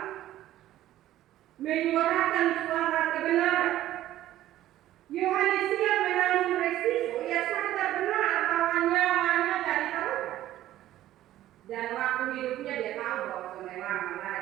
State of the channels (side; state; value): left; quieter; 13.7 dB